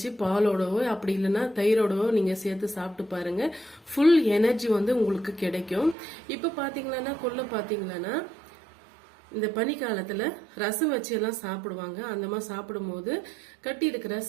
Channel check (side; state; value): left; drops out; at 6.0 s